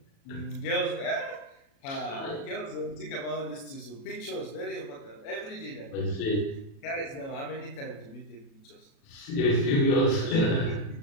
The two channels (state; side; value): late; right; 36 ms